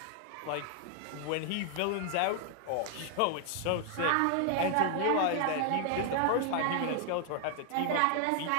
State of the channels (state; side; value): different; both; correlation 0.00